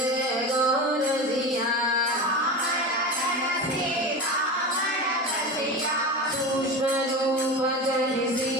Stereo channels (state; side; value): normal; both; correlation 0.26